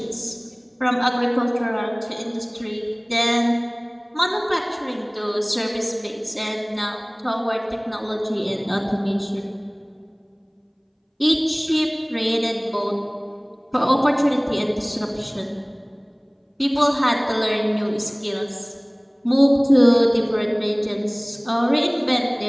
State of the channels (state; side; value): identical; both; correlation 1.00